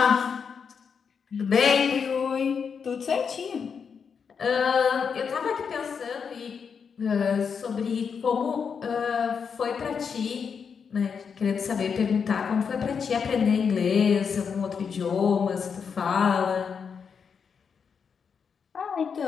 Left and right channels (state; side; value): quieter; right; 6.3 dB